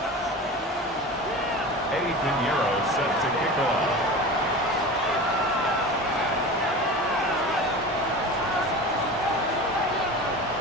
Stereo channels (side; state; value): both; normal; correlation 0.32